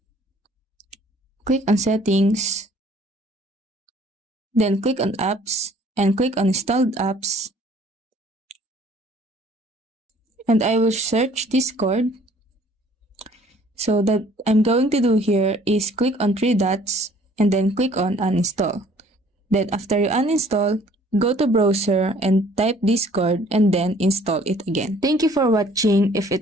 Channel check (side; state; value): both; normal; correlation 0.57